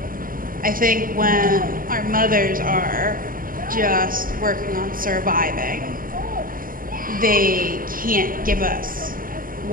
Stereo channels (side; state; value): left; late; 0.41 ms